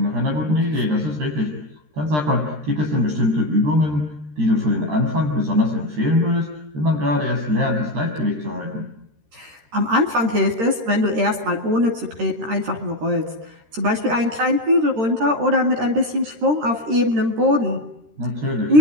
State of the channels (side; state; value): left; late; 13 ms